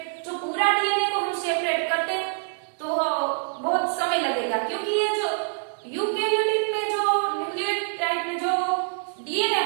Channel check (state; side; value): silent; left; digital silence